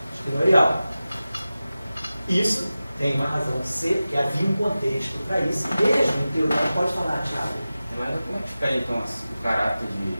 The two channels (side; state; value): both; inverted; correlation -0.95